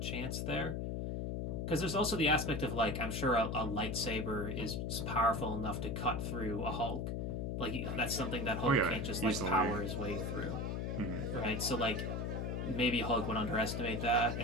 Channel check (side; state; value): left; noise; hum, 2 dB below the sound